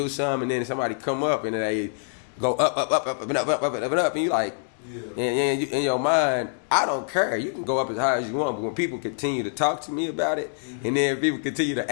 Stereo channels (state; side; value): silent; right; digital silence